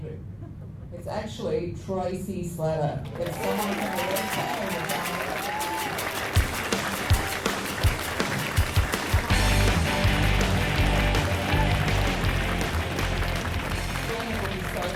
It's actually Tracy Slatter. It's someone from the website.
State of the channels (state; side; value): identical; both; correlation 1.00